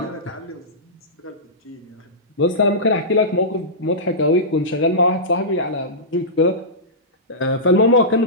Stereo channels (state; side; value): normal; both; correlation -0.16